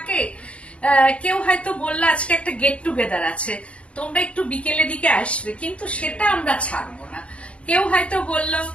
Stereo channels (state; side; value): late; right; 0.061 ms